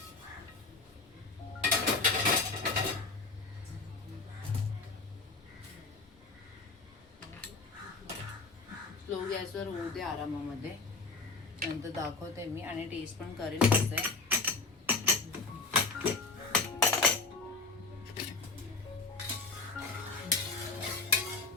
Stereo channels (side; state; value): right; quieter; 3.8 dB